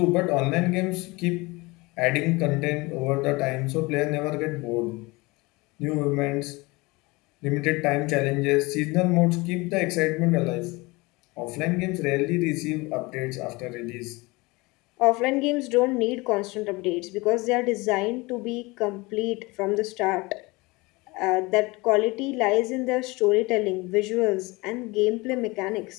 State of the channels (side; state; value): right; quieter; 23.9 dB